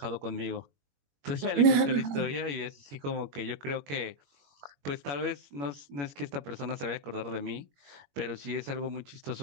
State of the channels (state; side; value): late; left; 21 ms